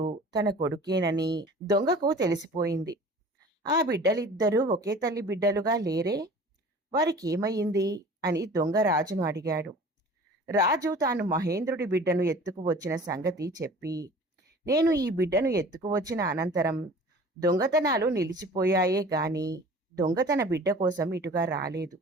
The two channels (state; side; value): normal; both; correlation 0.44